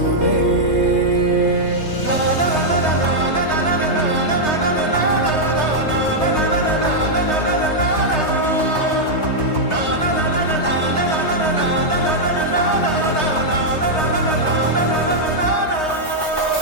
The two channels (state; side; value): late; right; 3.2 ms